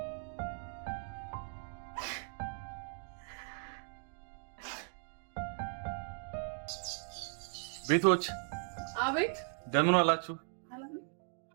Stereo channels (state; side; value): silent; left; 53 dB below the other